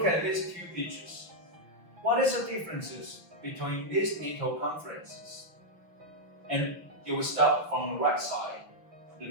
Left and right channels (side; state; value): left; late; 6.2 ms